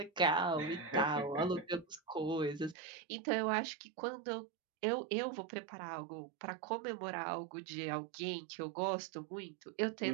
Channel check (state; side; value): drops out; left; at 2.8 s